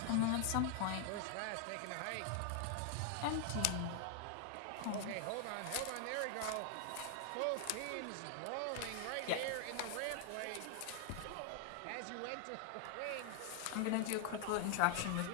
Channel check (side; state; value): both; different; correlation 0.00